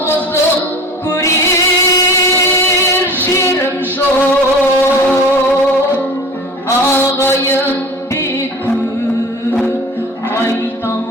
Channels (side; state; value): both; normal; correlation 0.39